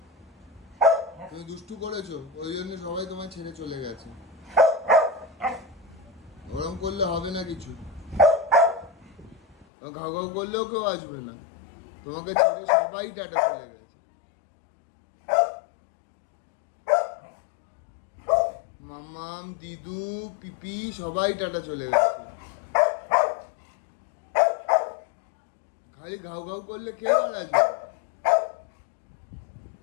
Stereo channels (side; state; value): right; drops out; at 9.7 s